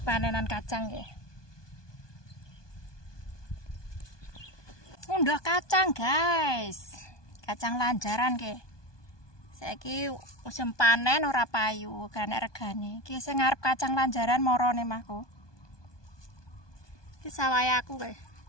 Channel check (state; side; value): late; right; 1.2 ms